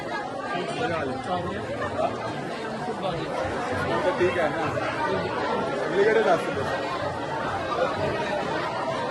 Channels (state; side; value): identical; both; correlation 1.00